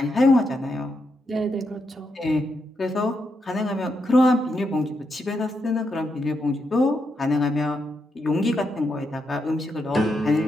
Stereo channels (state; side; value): normal; both; correlation 0.82